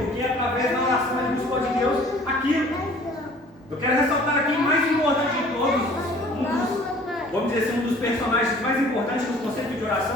através da oração ele buscou de Deus aquilo. Eu quero ressaltar aqui o mais importante de todos, vamos dizer assim, um dos personagens mais importantes no conceito de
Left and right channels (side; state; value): both; normal; correlation 0.51